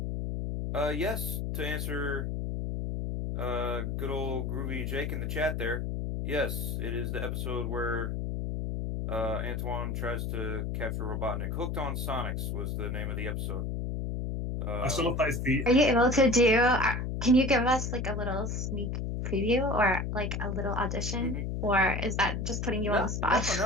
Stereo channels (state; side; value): noise; left; hum, 2 dB below the sound